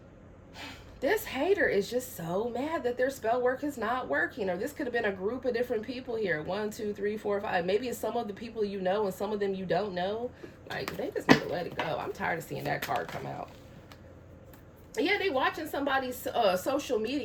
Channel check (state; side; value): identical; both; correlation 1.00